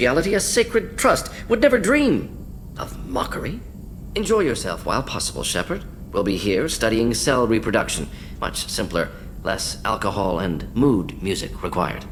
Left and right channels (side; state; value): both; identical; correlation 1.00